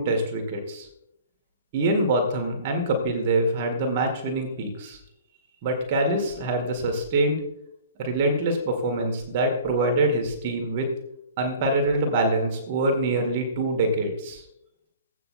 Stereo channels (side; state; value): both; inverted; correlation -0.45